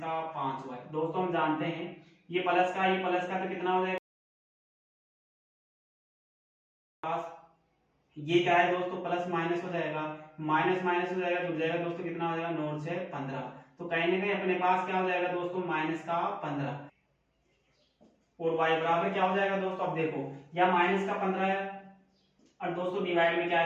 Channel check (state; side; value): identical; both; correlation 1.00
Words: दोस्तों हम जानते हैं ये प्लस का तो कितना हो जाएगा, ये क्या है दोस्तों प्लस माइनस हो जाएगा, माइनस माइनस हो जाएगा, जुड़ जाएगा दोस्तों, कितना हो जाएगा 9 से 15। तो कहीं ना कहीं अपने पास क्या हो जाएगा दोस्तों -15 और y बराबर क्या हो जाएगा दोस्तों, अब देखो यह -15 है और दोस्तों डिवाइड में क्या आ